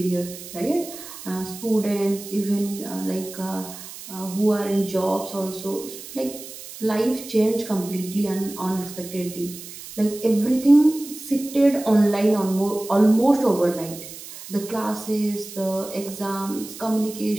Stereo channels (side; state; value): right; noise; hiss, 14 dB below the sound